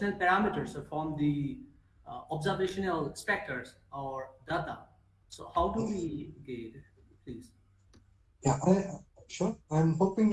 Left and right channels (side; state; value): both; identical; correlation 1.00